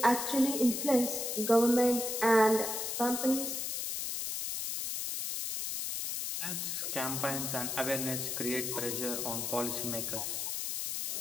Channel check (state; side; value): noise; left; hiss, 3 dB below the sound